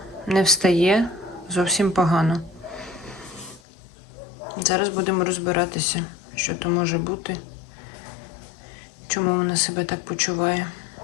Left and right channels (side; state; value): right; drops out; at 3.6 s